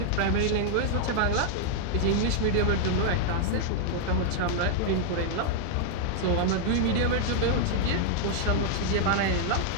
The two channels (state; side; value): different; both; correlation 0.00